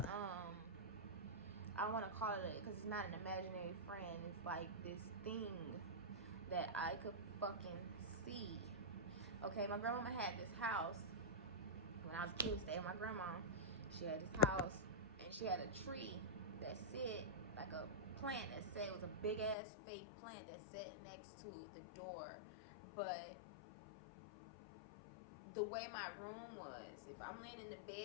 I want to call it, because it's not an imaginary friend, it's like this thing that I could fucking see. Okay, my grandmama had this house when I was a kid. Stayed with my grandma. She had this house, and she had a tree that said, like a plant that said, it was a big ass fake plant that sat next to the door. But the way my room was, if I'm laying in the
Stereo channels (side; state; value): right; drops out; at 19.6 s